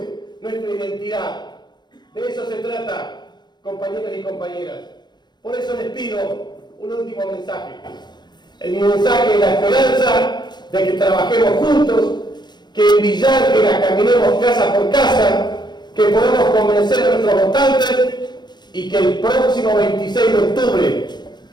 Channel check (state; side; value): late; right; 0.21 ms